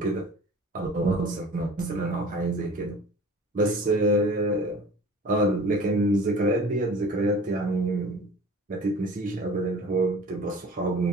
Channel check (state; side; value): normal; both; correlation 0.43